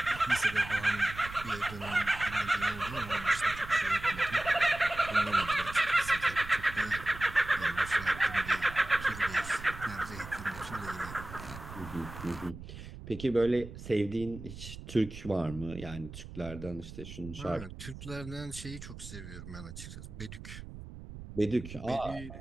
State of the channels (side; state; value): right; noise; rumble, 12 dB below the sound